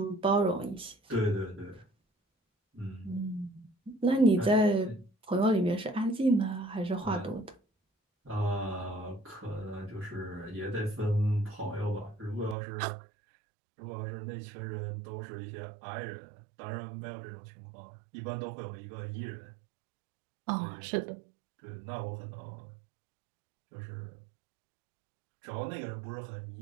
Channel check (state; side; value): drops out; left; at 12.6 s